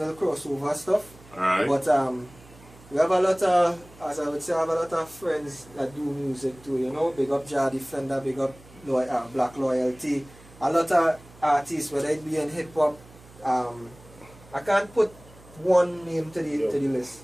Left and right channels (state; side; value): noise; right; hum, 23 dB below the sound